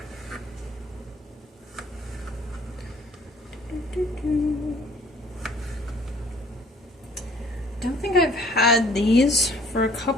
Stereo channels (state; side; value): normal; both; correlation 0.56